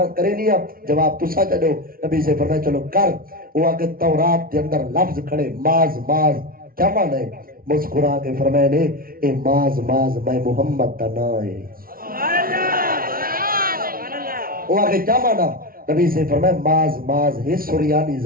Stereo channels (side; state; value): left; late; 0.43 ms